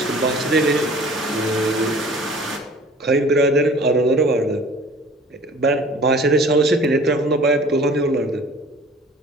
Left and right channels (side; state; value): both; normal; correlation 0.47